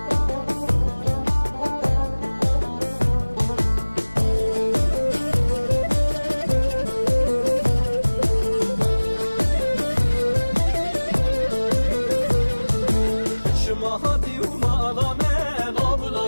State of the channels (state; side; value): inverted; both; correlation -1.00